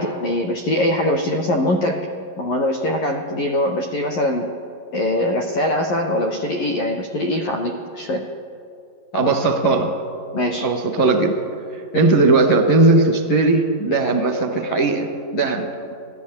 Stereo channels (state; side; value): late; right; 11 ms